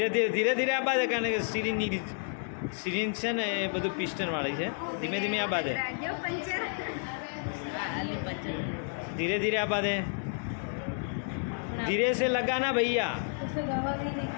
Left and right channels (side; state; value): right; silent; 57 dB below the other